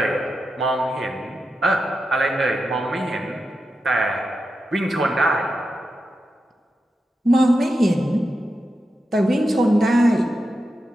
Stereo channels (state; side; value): normal; both; correlation 0.89